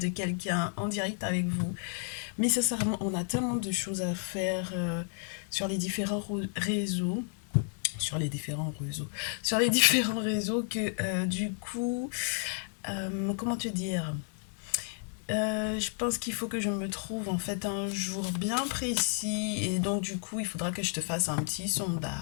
quelqu'un en direct avec vous. Mais sincèrement, on a tellement de choses à faire sur les différents réseaux. Sur les différents réseaux. Sur les différents réseaux que du coup, comment te dire, je pense qu'il faut que je me trouve en fait un jour bien précis et donc du coup il faudra que je te fasse un petit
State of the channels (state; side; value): silent; right; 57 dB below the other